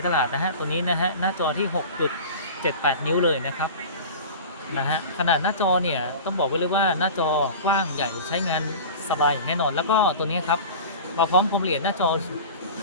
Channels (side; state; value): both; inverted; correlation -0.34